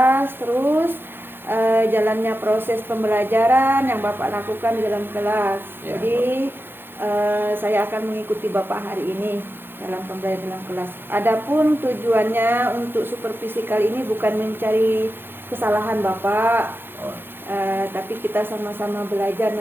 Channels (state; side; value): late; left; 0.10 ms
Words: terus jalannya proses pembelajaran yang Bapak lakukan di dalam kelas. Ya. Jadi saya akan mengikuti Bapak hari ini dalam pembelajaran dalam kelas. Adapun tujuannya untuk supervisi kali ini bukan mencari kesalahan Bapak, tapi kita sama-sama belajar